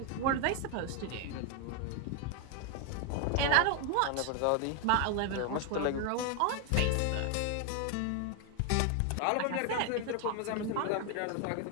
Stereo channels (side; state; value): both; different; correlation 0.01